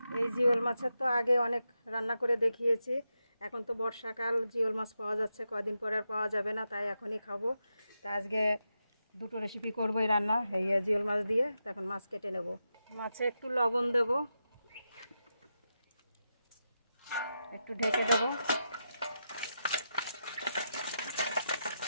এই জিওল মাছের তো আগে অনেক রান্না করে দেখিয়েছি। এখন তো বর্ষাকাল, জিওল মাছ পাওয়া যাচ্ছে, কয়দিন পরে আর পাওয়া যাবে না, তাই এখনই খাবো। তা আজকে দুটো রেসিপি করবো এই রান্না, এই জিওল মাছ দিয়ে। তখন মাছ কেটে নেব। মাছে একটু লবণ দেব, একটু ঢেকে দেব।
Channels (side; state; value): both; inverted; correlation -0.87